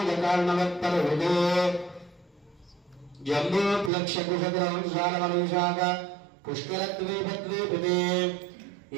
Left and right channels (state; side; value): drops out; left; at 3.9 s